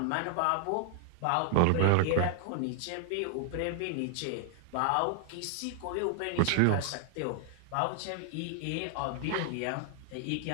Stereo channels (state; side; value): different; both; correlation 0.00